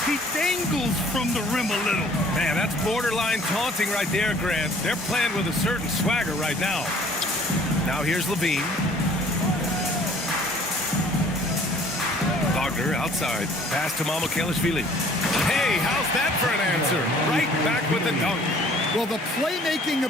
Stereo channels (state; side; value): normal; both; correlation 0.55